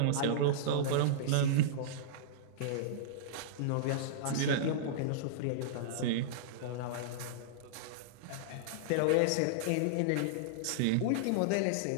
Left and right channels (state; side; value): different; both; correlation -0.02